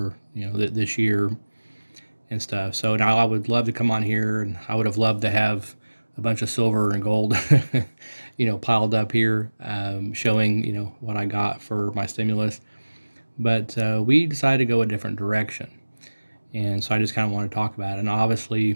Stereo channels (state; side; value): inverted; both; correlation -1.00